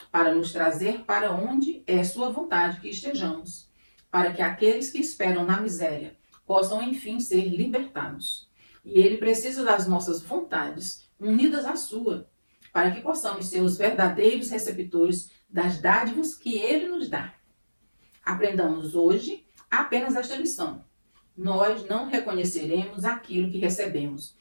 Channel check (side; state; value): both; inverted; correlation -1.00